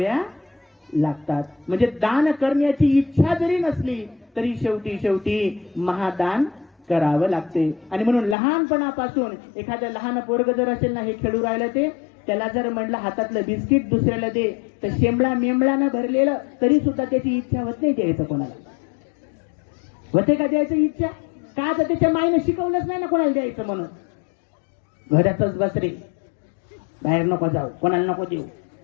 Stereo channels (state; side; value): drops out; right; at 8.3 s